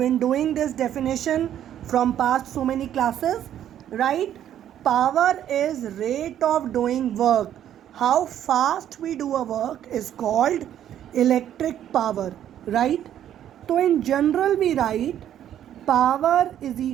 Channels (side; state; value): left; quieter; 10.7 dB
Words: doing this definition from past so many classes, right? Power is rate of doing work. How fast we do a work is called electric power, right? So in general we write power is